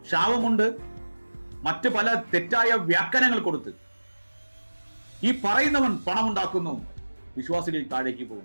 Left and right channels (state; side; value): inverted; both; correlation -1.00